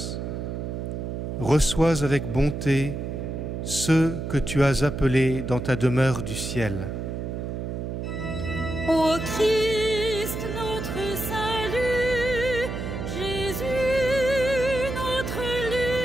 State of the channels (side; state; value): right; noise; hum, 5 dB below the sound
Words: Reçois avec bonté ceux que tu as appelés dans ta demeure du ciel. Ô Christ, notre salut, Jésus, notre